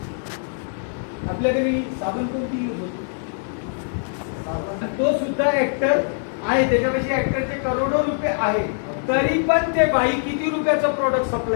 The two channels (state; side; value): silent; right; 58 dB below the other